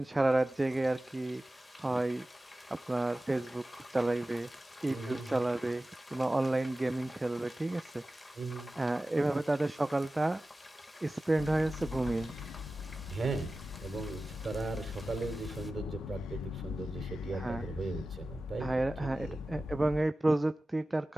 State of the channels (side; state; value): both; normal; correlation 0.95